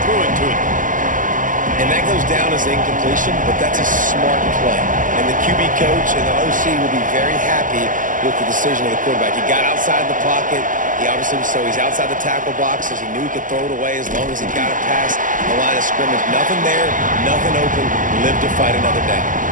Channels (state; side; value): late; left; 0.38 ms